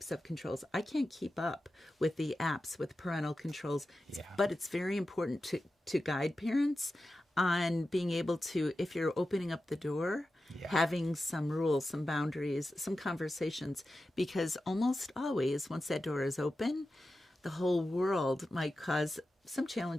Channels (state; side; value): normal; both; correlation 0.92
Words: of controls? I can't keep up with the apps, with parental controls. But it's very important to guide parents on being able to, if you're opening up the door, having some rules, some boundaries, some conversations. Because almost always, once that door is open, the whole world might cause some